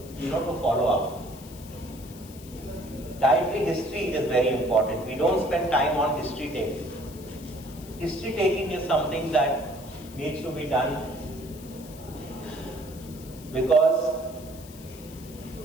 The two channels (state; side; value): noise; left; hiss, 19 dB below the sound